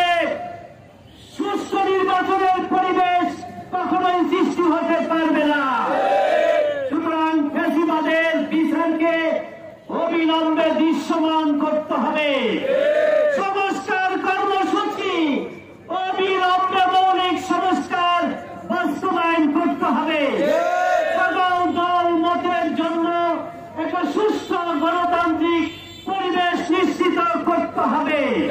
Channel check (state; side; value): identical; both; correlation 1.00